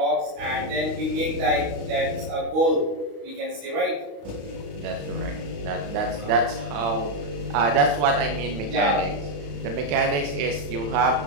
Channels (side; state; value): left; late; 35 ms